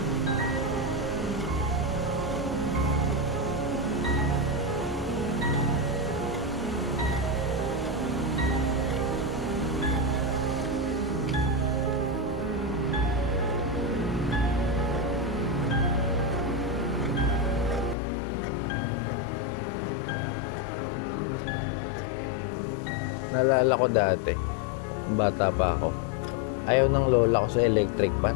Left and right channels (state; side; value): drops out; right; at 17.9 s